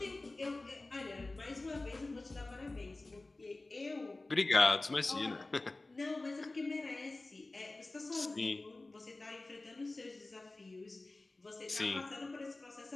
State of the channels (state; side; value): quieter; right; 3.1 dB